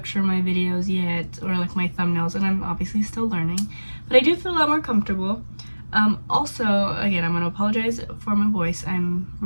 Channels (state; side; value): inverted; both; correlation -1.00